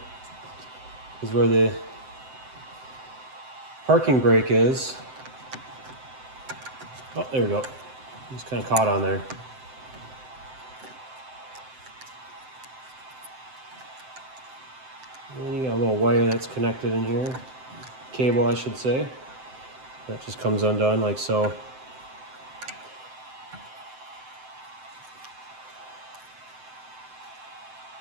This is where the parking brake is. Oh, there we go. Just kind of caught on there. And then you got a little wire that's connected in here. Cable, I should say. That just comes undone like so.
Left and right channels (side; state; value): left; late; 7.8 ms